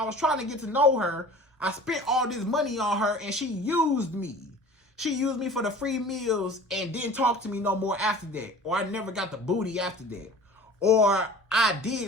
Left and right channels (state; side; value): normal; both; correlation 0.42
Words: was trying to get to know her. I spent all this money on her, and she used me. She used me for the free meals and didn't talk to me no more after that. Or I never got the booty after that. Or I